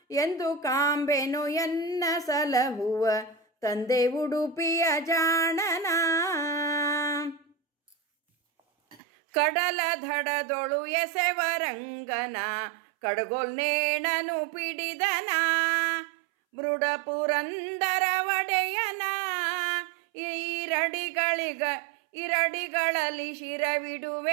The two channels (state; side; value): drops out; left; at 9.0 s